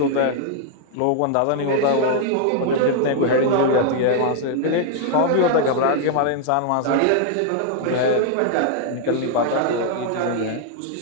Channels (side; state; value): both; different; correlation 0.00